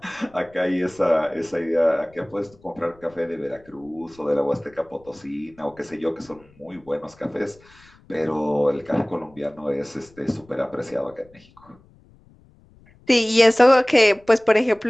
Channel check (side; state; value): left; noise; rumble, 28 dB below the sound